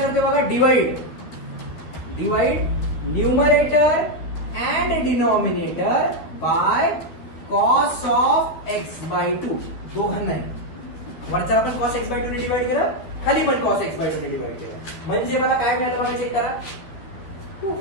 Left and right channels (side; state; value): right; late; 13 ms